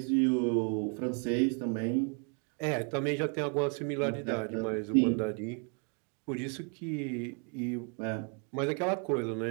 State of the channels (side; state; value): left; quieter; 38.8 dB